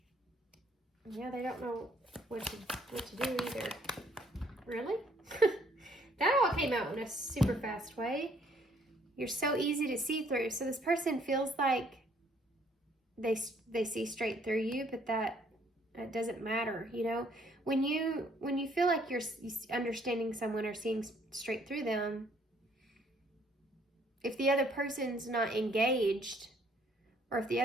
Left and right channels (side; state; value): both; normal; correlation 0.64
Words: Yeah, they don't know what to do either. Really? That all came out in a super fast way. You're so easy to see through. So this person feels like they see straight through you, but that doesn't matter, you know? When you feel like you're understanding someone or seeing straight through them, if the other person's not engaged, or if the